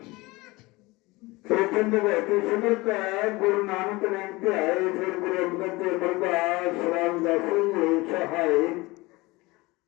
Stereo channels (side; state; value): right; quieter; 22.3 dB